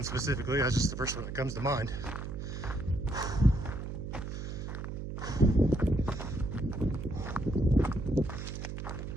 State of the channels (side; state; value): right; noise; hum, 6 dB below the sound